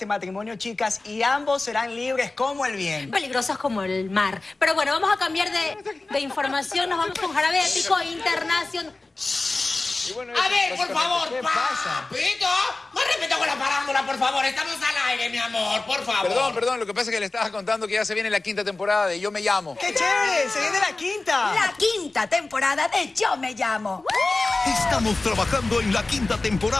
matrimonio, chicas, y ambos serán libres como el viento. Peligrosos como el mar. Pero bueno, vamos a cambiar de información. Nos vamos con Jarabe Épico Internacional. Bueno, a ver, por favor, ¿qué pasa? Papito, más respeto con la parándula, por favor. Estamos al aire, mi amor, por favor. Perdón, lo que pasa es que le estaba contando que ya se viene la 5ª temporada de Yo Me Llamo. ¡Qué chévere! ¡Se viene la 5ª! La 5ª temporada de Yo Me Llamo. Estamos trabajando en la 5ª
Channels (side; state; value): right; quieter; 3.3 dB